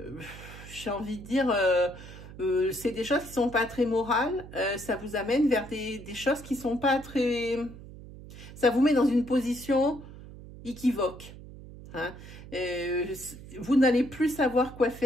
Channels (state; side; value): noise; right; hum, 15 dB below the sound